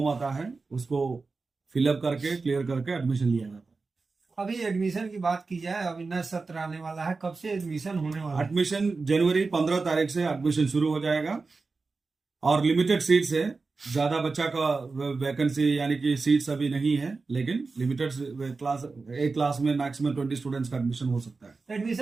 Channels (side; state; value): left; quieter; 4.1 dB